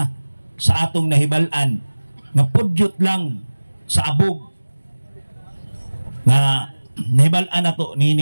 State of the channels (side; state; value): both; inverted; correlation -1.00